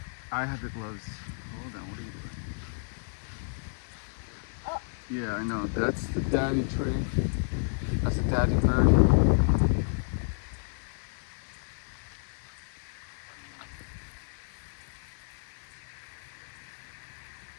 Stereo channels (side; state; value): right; silent; digital silence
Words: I have the gloves. Hold on. What are you doing? Oh. Yeah, I know. That's the daddy tree. That's a daddy bird.